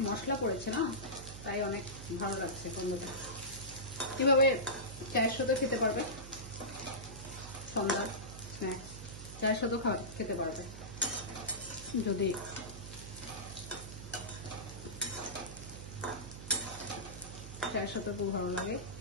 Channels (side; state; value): right; noise; hum, 12 dB below the sound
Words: মশলা পড়েছে না, তাই অনেক ভালো লাগছে গন্ধটা। এভাবে চায়ের সাথে খেতে পারবে, সন্ধ্যার স্ন্যাক্স চায়ের সাথেও খেতে পারবে। যদি চায়ের সাথে খুব ভালো লাগে